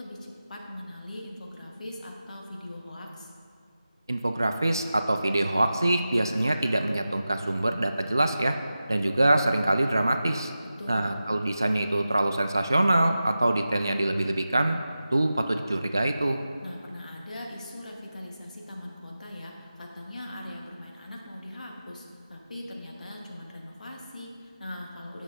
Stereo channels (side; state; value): both; inverted; correlation -0.93